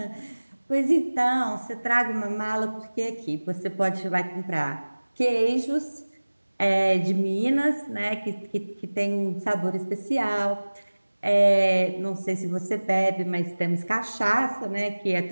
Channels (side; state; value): both; inverted; correlation -1.00